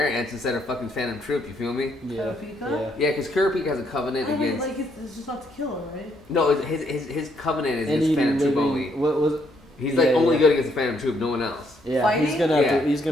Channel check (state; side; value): normal; both; correlation 0.72